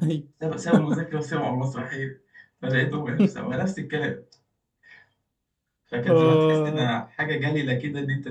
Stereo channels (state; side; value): identical; both; correlation 1.00